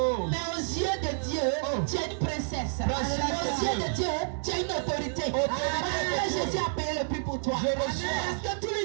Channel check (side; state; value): left; silent; digital silence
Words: Mais aux yeux de Dieu, tu es une princesse. Aux yeux de Dieu, tu as une autorité. Parce que Jésus a payé le prix pour toi. Parce que tout